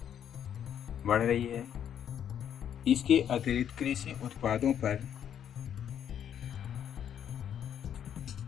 बढ़ रही है। इसके अतिरिक्त कृषि उत्पादों पर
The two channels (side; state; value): right; quieter; 9.3 dB